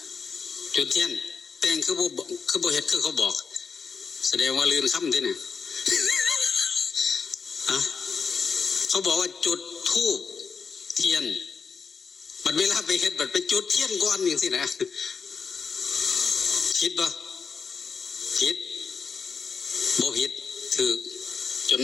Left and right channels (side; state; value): right; quieter; 5.6 dB